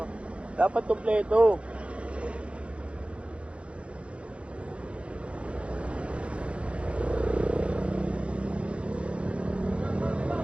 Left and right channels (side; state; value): left; late; 0.060 ms